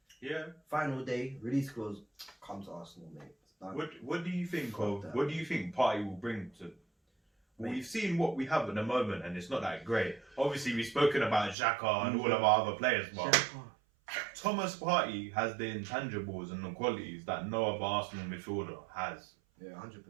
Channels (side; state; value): left; drops out; at 11.6 s